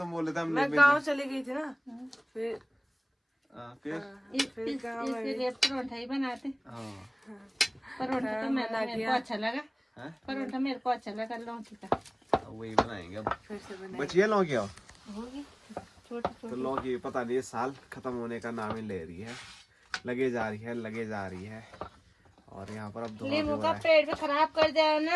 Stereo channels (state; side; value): identical; both; correlation 1.00